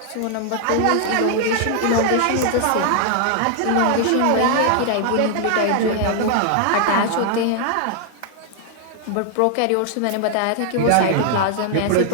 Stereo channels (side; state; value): both; different; correlation 0.00